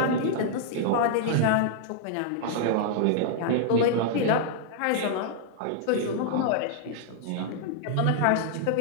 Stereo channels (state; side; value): different; both; correlation -0.01